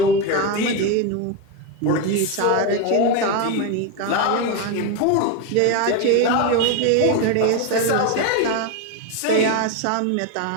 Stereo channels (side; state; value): both; different; correlation 0.03